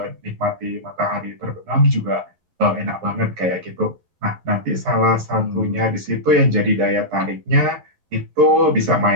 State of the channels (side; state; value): left; late; 11 ms